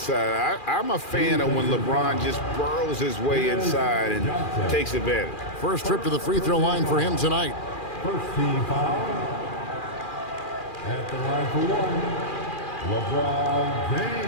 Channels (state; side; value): late; right; 2.4 ms